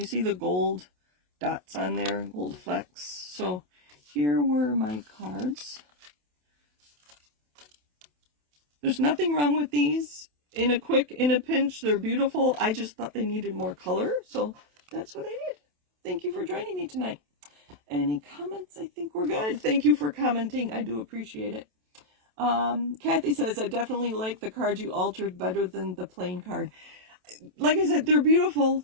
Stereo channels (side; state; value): left; late; 27 ms